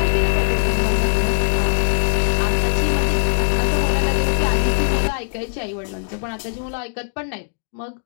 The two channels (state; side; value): silent; right; digital silence